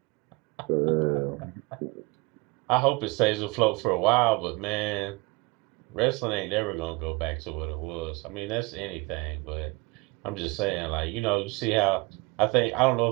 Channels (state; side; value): quieter; left; 25.5 dB